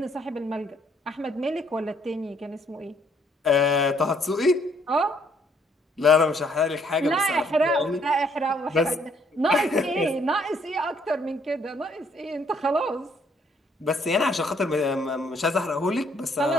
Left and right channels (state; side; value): normal; both; correlation 0.66